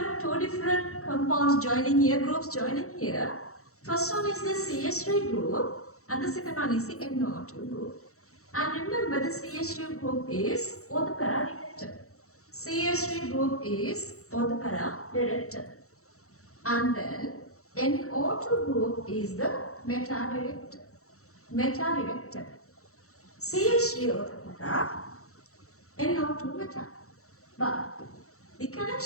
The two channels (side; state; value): right; late; 0.64 ms